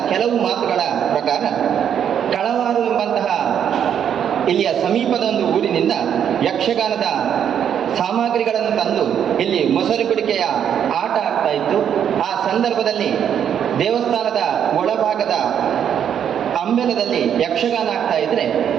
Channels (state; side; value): quieter; left; 8.8 dB